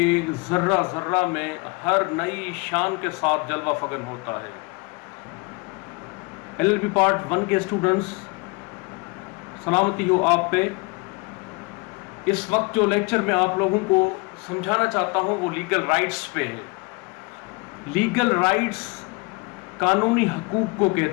ذرہ ذرہ میں ہر نئی شان کے ساتھ جلوہ فگن ہوتا ہے۔ LLB پارٹ 1 کے اسٹوڈنٹس، سلامتی ہو آپ پہ۔ اس وقت جو لیکچر میں آپ لوگوں کو سمجھانا چاہتا ہوں وہ لیگل رائٹس پہ ہے۔ لیگل رائٹس قانونی حقوق کو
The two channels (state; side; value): quieter; right; 28.7 dB